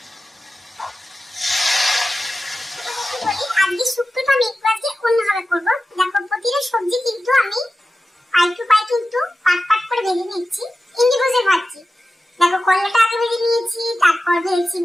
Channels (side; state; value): both; normal; correlation 0.94